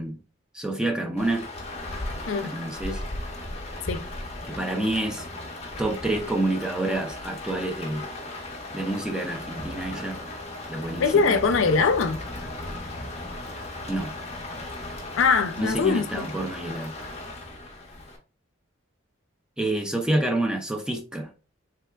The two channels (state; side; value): normal; both; correlation 0.39